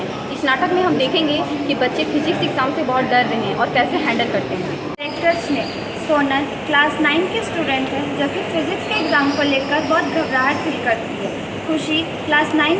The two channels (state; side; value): identical; both; correlation 1.00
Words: इस नाटक में हम देखेंगे कि बच्चे फिजिक्स एग्ज़ाम से बहुत डर रहे हैं और कैसे हैंडल करते हैं। कैरेक्टर्स ने सोनल क्लास 9 की स्टूडेंट है जो कि फिजिक्स के एग्ज़ाम को लेकर बहुत घबराहट फील करती है। खुशी क्लास